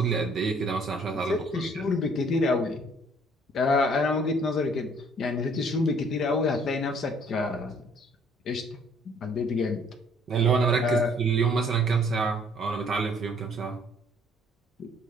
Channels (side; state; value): both; normal; correlation 0.60